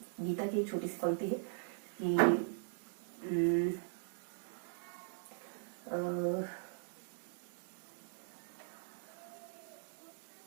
गीता की एक छोटी सी पंक्ति है कि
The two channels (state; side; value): silent; left; digital silence